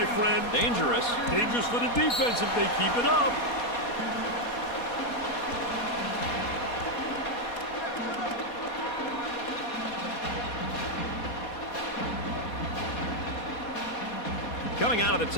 friend. Dangerous. Dangerous for the defense if they keep it up. Coming out of the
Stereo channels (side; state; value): right; late; 4.2 ms